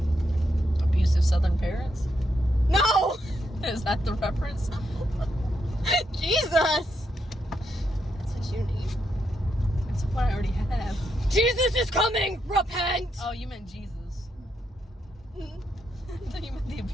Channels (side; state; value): both; normal; correlation 0.80